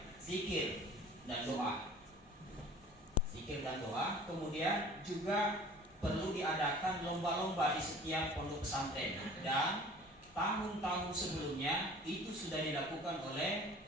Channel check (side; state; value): both; normal; correlation 0.47